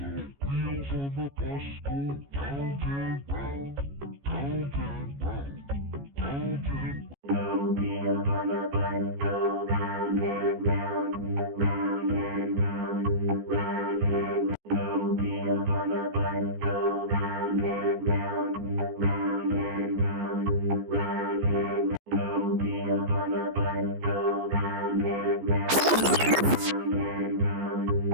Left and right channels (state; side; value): late; left; 14 ms